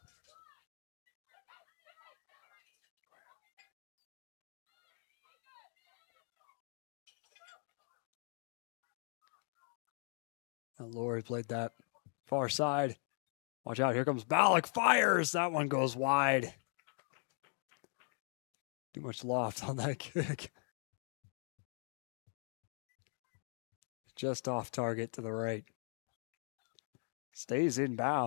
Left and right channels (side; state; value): right; silent; 51 dB below the other